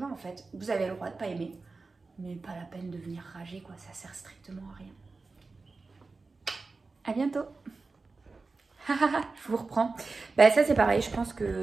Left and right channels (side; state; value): left; quieter; 3.9 dB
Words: en fait. Vous avez le droit de pas aimer. Mais pas la peine de venir rager, quoi. Ça sert strictement à rien. À bientôt. Je vous reprends. Bah, ça, c'est pareil. Je pense